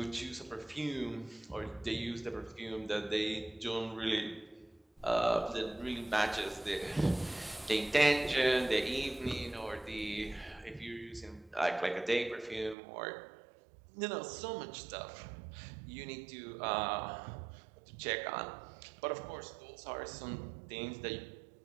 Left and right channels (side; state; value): left; drops out; at 12.8 s